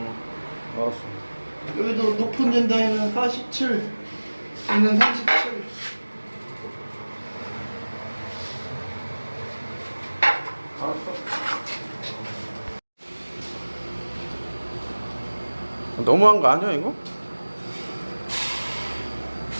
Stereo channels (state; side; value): inverted; both; correlation -1.00